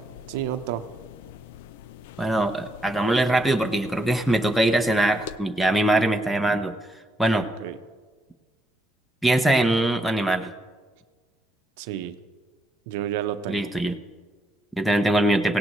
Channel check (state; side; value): normal; both; correlation 0.79